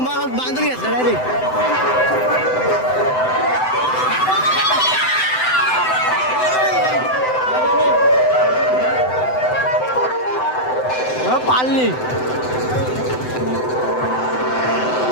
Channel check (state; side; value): late; right; 7.9 ms